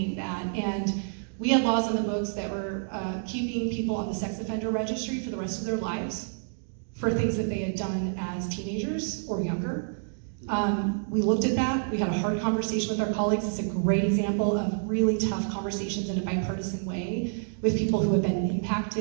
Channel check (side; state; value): left; silent; digital silence